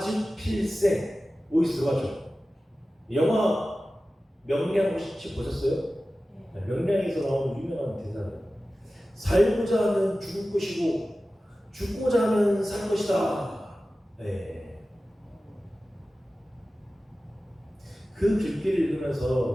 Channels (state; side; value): normal; both; correlation 0.95